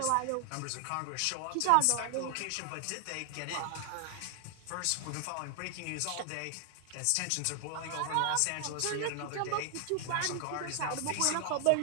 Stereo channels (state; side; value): different; both; correlation 0.00